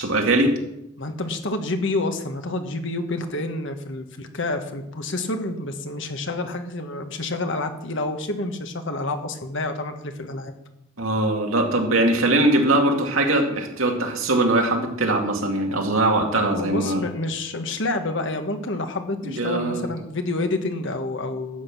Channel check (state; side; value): normal; both; correlation 0.22